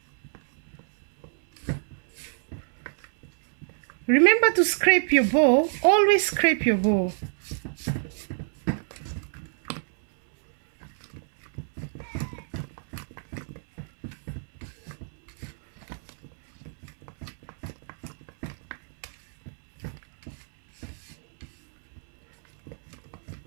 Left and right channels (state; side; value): silent; left; 60 dB below the other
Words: Remember to scrape your bowl. Always scrape your bowl.